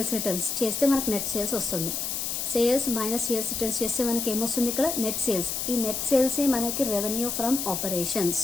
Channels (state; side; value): noise; left; hiss, 2 dB below the sound